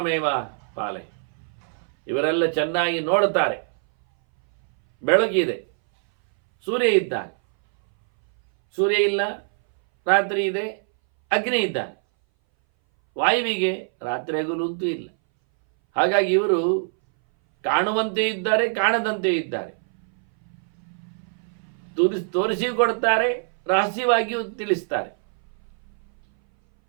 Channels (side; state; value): left; silent; 61 dB below the other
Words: ಪಾಲೆ. ಇವರೆಲ್ಲ ಚೆನ್ನಾಗಿ ನೋಡುತ್ತಾರೆ. ಬೆಳಕಿದೆ, ಸೂರ್ಯ ಇದ್ದಾನೆ, ಸೂರ್ಯ ಇಲ್ಲ, ರಾತ್ರಿ ಇದೆ, ಅಗ್ನಿ ಇದ್ದಾನೆ. ವಾಯುವಿಗೆ ರಾತ್ರಿ ಹಗಲು ಅಂತೂ ಇಲ್ಲ. ಹಾಗಾಗಿ ಇವರು ಕಾಣುವಂತೆ ಇದ್ದಾರೆ, ಕಾಣದಂತೆ ಇದ್ದಾರೆ. ತೋರಿಸಿ ಕೊಡ್ತಾರೆ, ರಹಸ್ಯವಾಗಿಯೂ ತಿಳಿಸ್ತಾರೆ.